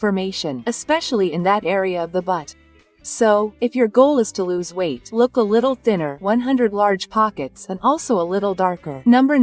especially in that area of the butt. So, if your goal is to lose weight, look a little thinner, 100 large pockets, and also a little darker. Number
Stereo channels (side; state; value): both; identical; correlation 1.00